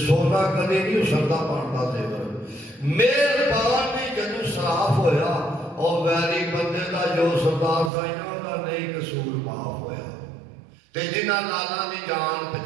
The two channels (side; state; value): left; drops out; at 7.9 s